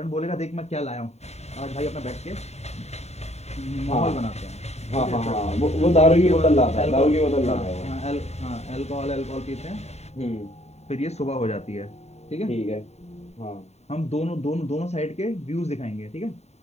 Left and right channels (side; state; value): right; late; 0.32 ms